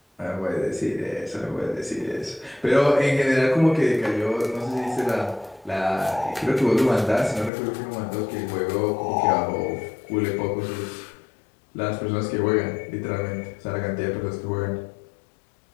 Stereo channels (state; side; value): drops out; right; at 7.5 s